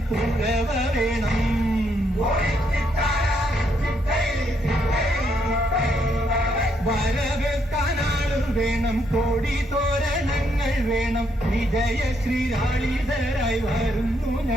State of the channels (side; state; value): both; normal; correlation 0.75